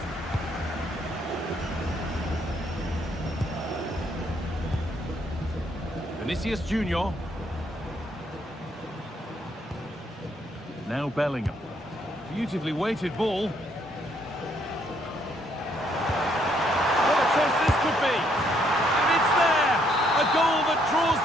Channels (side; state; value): both; normal; correlation 0.70